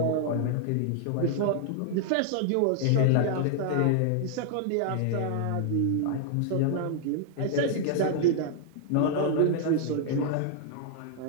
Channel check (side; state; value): both; different; correlation -0.01